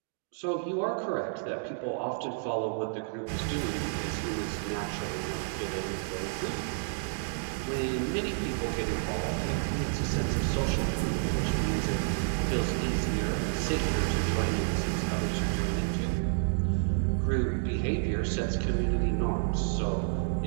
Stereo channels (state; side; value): silent; left; digital silence